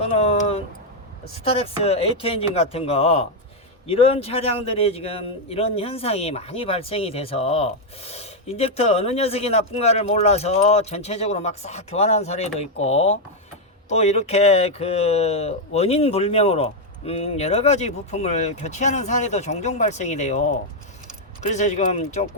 스타렉스 A2 엔진 같은 거, 이런 차량들이 지금 이런 현상이 많이 발생이 돼서 인젝터 어느 녀석이 나쁜가를 몰라서 전체적으로 막 싹 교환하는 사례도 있고, 또 이렇게 원인 불명으로 여러 가지 부품을 교체하는 사례도 종종 발생이 돼요. 그래서 지금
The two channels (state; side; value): normal; both; correlation 0.00